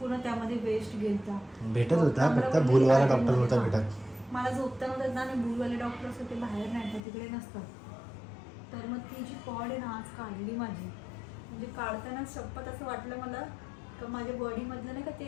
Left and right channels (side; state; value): right; drops out; at 7.0 s